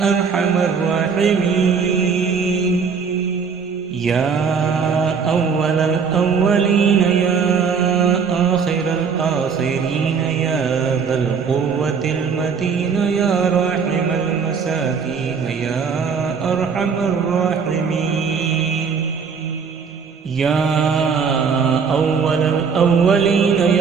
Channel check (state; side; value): quieter; left; 5.9 dB